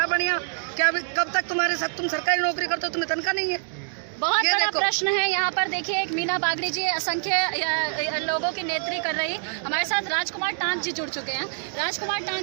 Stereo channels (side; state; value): left; silent; 61 dB below the other